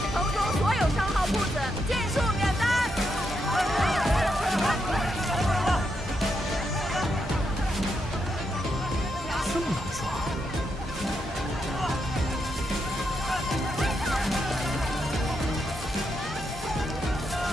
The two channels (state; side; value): normal; both; correlation 0.82